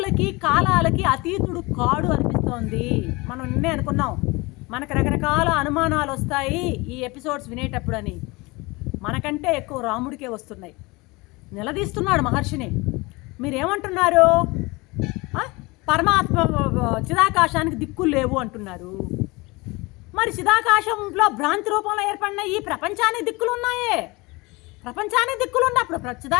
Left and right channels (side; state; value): right; quieter; 24.1 dB